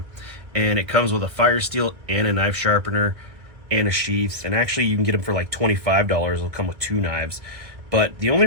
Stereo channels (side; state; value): left; late; 1.8 ms